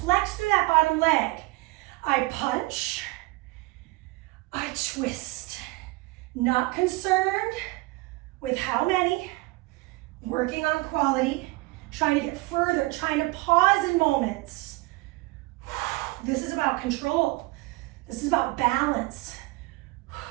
Flex through that bottom leg. I punch. I twist. Not concerned with how many. Working on quality. Trying to get further. Trying to pause in moments. This is about control. This is about balance.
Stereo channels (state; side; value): quieter; left; 22.2 dB